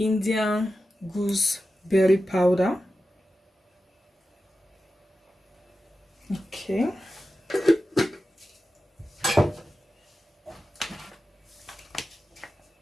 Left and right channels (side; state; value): both; normal; correlation 0.92